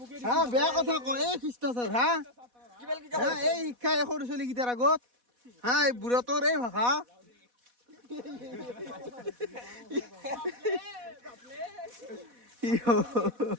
হা বেয়া কথা কয় এই খ্ৰীষ্টাচাৰ হা এই শিক্ষা এই সৰু ছোৱালী কেইটাৰ আগত হা এই বুঢ়াটোৰ এই ভাষা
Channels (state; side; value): late; left; 4.1 ms